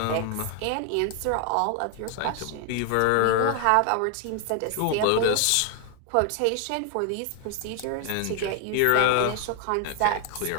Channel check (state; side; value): different; both; correlation 0.00